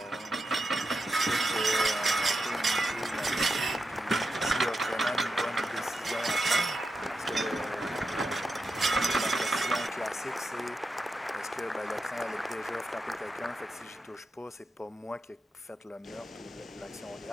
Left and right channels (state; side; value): normal; both; correlation 0.88